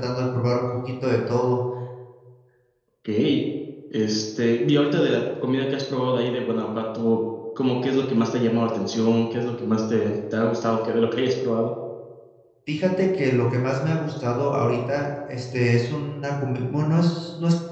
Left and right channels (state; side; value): identical; both; correlation 1.00